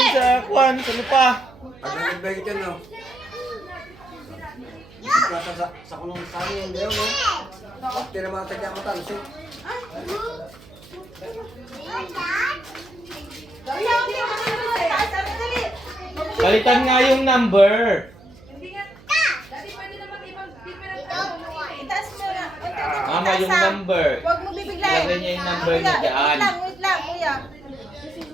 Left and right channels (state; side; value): noise; right; hum, 23 dB below the sound